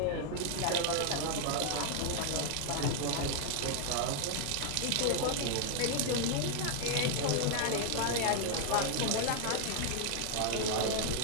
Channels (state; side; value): different; both; correlation 0.00